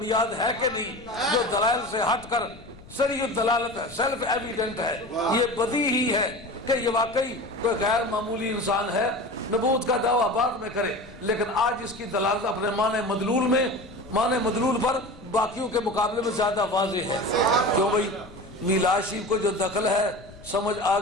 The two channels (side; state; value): left; noise; rumble, 20 dB below the sound